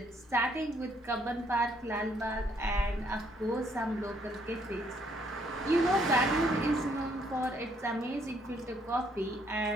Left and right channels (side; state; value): both; normal; correlation 0.68